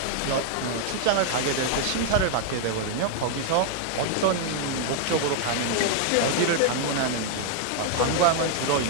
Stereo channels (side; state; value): both; different; correlation 0.00